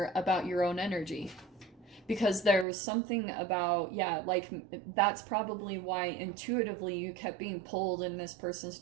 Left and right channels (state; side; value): drops out; left; at 2.7 s